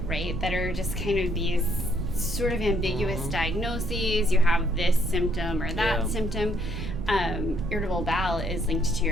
right, that are just kind of these sort of ambiguous diagnoses. You have this symptom or that symptom. Irritable bowel is linked to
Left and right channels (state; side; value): noise; right; rumble, 4 dB below the sound